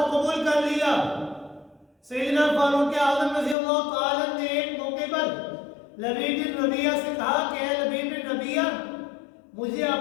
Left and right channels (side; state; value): right; drops out; at 3.6 s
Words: قبول کر لیا. سیدنا فاروق اعظم رضی اللہ تعالیٰ نے ایک موقع پر لبید بن ربیعہ سے کہا کہ اے لبید بن ربیعہ، مجھے